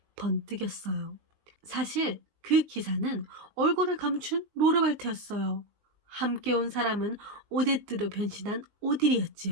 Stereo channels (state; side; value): late; left; 19 ms